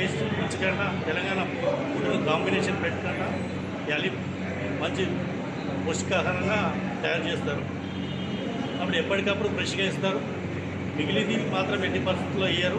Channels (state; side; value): identical; both; correlation 1.00